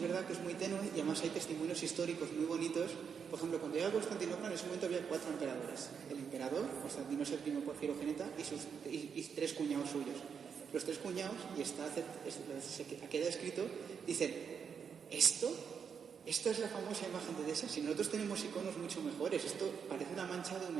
que es muy tenue, y además hay testimonios históricos muy bonitos. Por ejemplo, cuando llega a Constantinopla, en ese momento había 4 emperadores. El emperador, Constantino VII por Filogeneta, y 3 cuñados suyos. Los 3 cuñados, y queda escrito, dicen, ¿esto es la famosa imagen de Edesa? Si nosotros tenemos iconos mucho mejores, esto parece una mancha de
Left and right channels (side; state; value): left; quieter; 6.8 dB